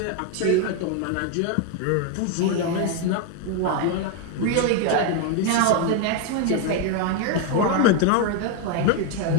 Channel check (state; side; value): different; both; correlation 0.01